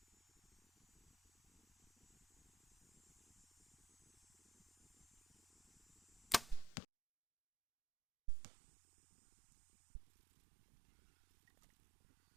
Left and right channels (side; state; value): left; drops out; at 6.9 s